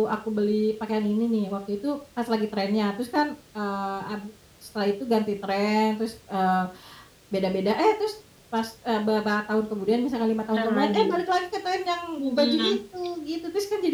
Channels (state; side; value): identical; both; correlation 1.00